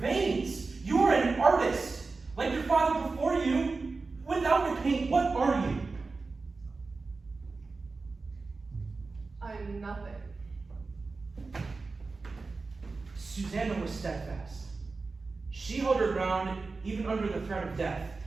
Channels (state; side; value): quieter; left; 4.0 dB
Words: You are an artist, like your father before you. Without your paint, what are you? I'm nothing. Susanna was steadfast. She held her ground even under the threat of death.